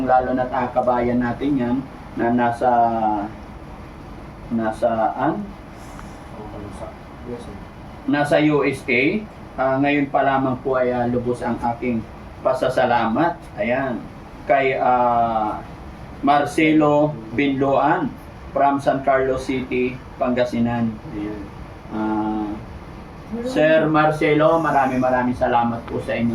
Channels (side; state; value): both; identical; correlation 1.00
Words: na kabayan natin yan, na nasa USA, ngayon pa lamang po ay lubos ang aking pasasalamat. Ayan, kay Marcelo Binloan from San Carlos City, Pangasinan. Ayan. Sir Marcelo, maraming salamat po sa